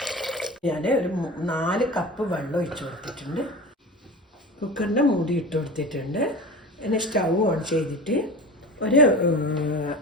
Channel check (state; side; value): normal; both; correlation 0.32